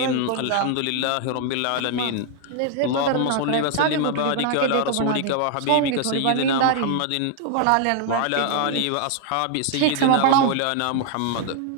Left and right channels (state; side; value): different; both; correlation 0.00